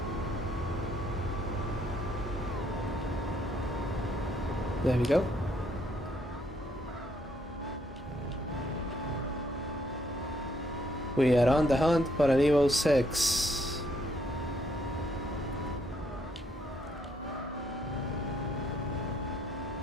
There we go. We are on the hunt for an Evo 6.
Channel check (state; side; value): normal; both; correlation 0.71